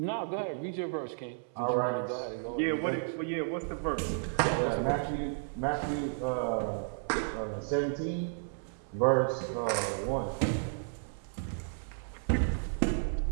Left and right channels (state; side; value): silent; left; 56 dB below the other